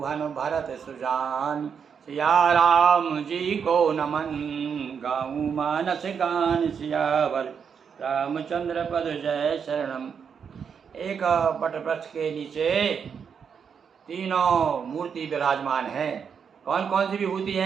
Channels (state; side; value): quieter; left; 6.8 dB